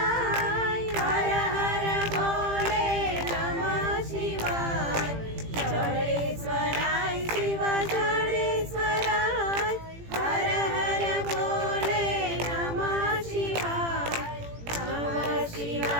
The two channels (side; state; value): left; late; 18 ms